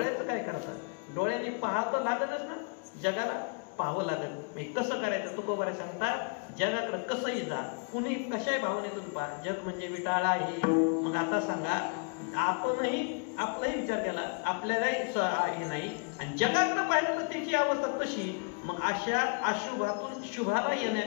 काय करता, डोळ्यांनी पाहतं लागतच ना, जगाला पाहावं लागत. कसं करायचं तुकोबारे सांगता, जगाकडे कसंही जा, कुणी कशाही भावनेतून पहा, जग म्हणजे विटाळा आहे. मग आता सांगा आपणही आपलाही विचार केला, आपल्यालाही हे नाही आणि जगाकडे पाहिलं तर त्याची अवस्था तशी. मग अशा अशुभातून शुभाला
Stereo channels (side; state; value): right; quieter; 38.0 dB